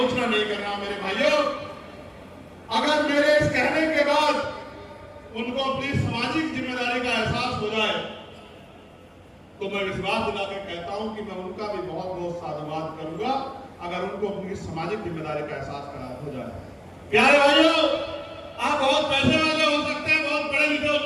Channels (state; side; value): identical; both; correlation 1.00